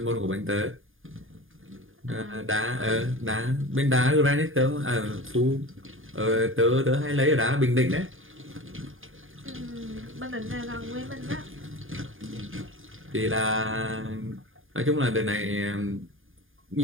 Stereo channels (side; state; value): left; late; 0.59 ms